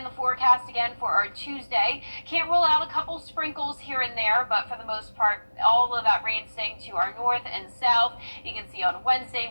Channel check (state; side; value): inverted; both; correlation -1.00